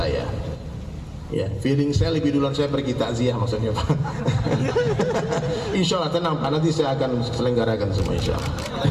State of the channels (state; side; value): identical; both; correlation 1.00